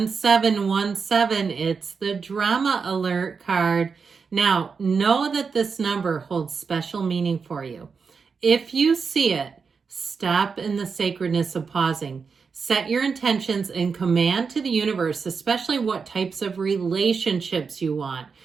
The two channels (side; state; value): left; quieter; 5.4 dB